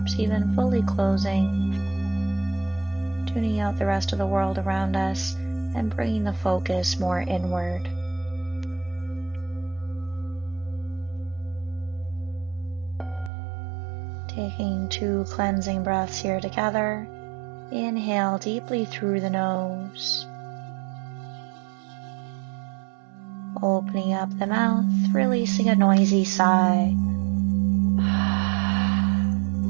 even fully closing, tuning out the rest of the world around us and bringing the focus more inward. Taking 2 cleansing breaths here together. Inhale deeply through the nose. Opening up the mouth, releasing a noisy sigh.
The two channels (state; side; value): drops out; left; at 13.3 s